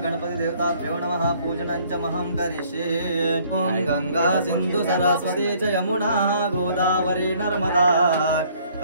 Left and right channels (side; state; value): both; inverted; correlation -0.60